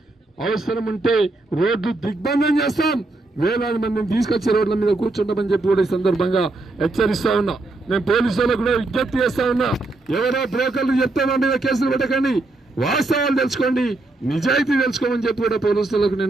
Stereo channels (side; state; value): left; quieter; 3.0 dB